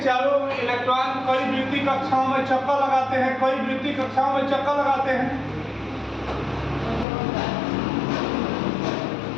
चारों ओर इलेक्ट्रॉन कई वृत्ति कक्षाओं में चक्कर लगाते हैं, कई वृत्ति कक्षाओं में चक्कर लगाते हैं,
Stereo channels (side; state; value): right; drops out; at 7.1 s